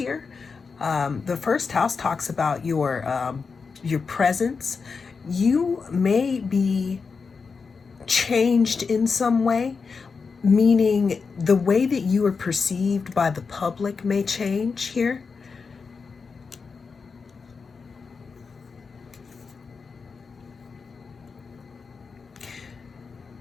The first house talks about your presence, you may be changed in some way, meaning the way that you are perceived by the public may change here.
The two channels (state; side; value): quieter; right; 5.1 dB